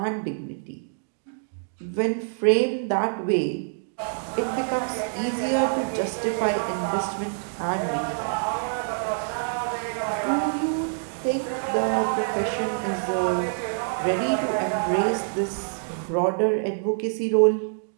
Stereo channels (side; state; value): left; silent; digital silence